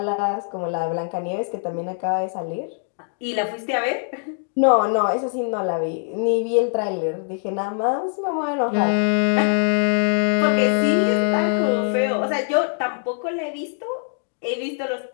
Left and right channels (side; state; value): right; silent; 64 dB below the other